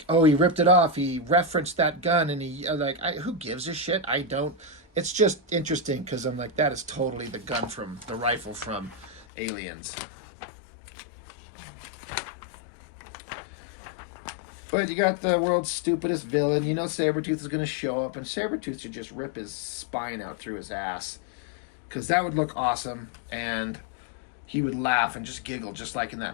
oh, he ripped it off. He referenced that gun, and he who gives a shit? I don't. It's just interesting because I'm like, that is totally the gun from the rifle from Aliens. But you got the world's stupidest villain. You know Sabretooth is going to show up, and Sabretooth should just rip his spine out through his ass, because that would look awesome, and he would laugh and just giggle just like in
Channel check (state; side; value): drops out; right; at 9.2 s